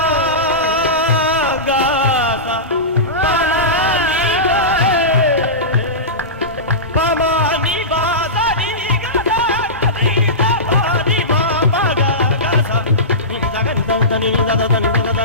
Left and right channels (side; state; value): both; normal; correlation -0.19